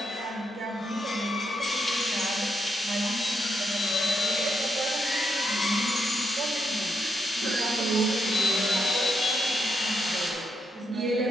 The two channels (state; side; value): normal; both; correlation 0.80